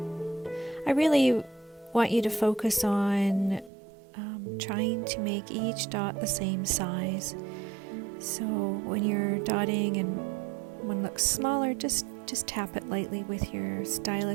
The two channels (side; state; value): left; drops out; at 3.7 s